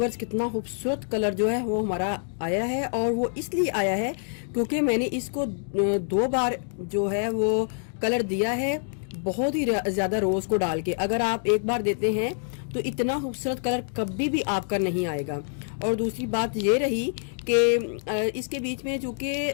कितना खूबसूरत कलर जो है वो हमारा आया है, और वो इसलिए आया है क्योंकि मैंने इसको 2 बार जो है वो कलर दिया है, बहुत ही ज्यादा रोज को डाल के। अगर आप एक बार देते हैं तो इतना खूबसूरत कलर कभी भी आपका नहीं आएगा। और दूसरी बात ये रही कि इसके बीच में चूंकि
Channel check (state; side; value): silent; right; digital silence